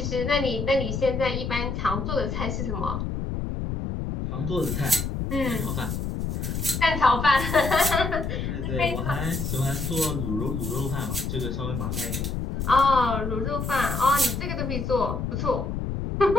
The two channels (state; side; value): noise; left; rumble, 3 dB below the sound